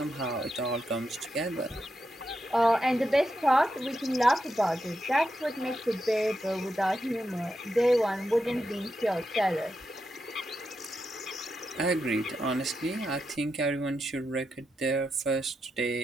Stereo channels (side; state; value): both; normal; correlation 0.86